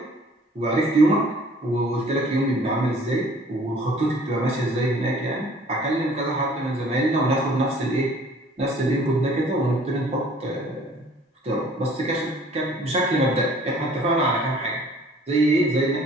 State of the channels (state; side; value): normal; both; correlation 0.54